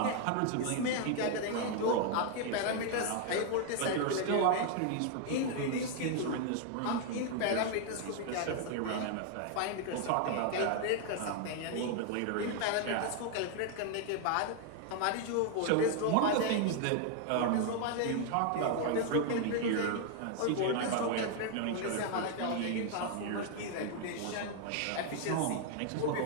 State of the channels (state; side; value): different; both; correlation 0.00